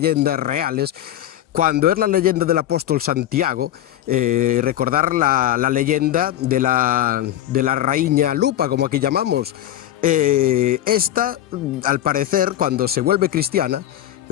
reales. Cuando es la leyenda del apóstol Santiago, recordar la leyenda de la raíña Lupa, como aquí llamamos. Esta, al parecer, cuando se vuelve cristiana,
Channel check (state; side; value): quieter; right; 12.6 dB